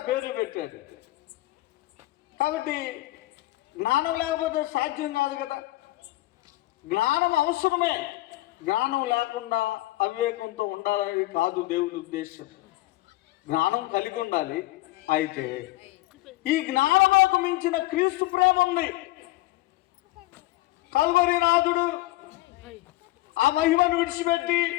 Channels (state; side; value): quieter; right; 18.5 dB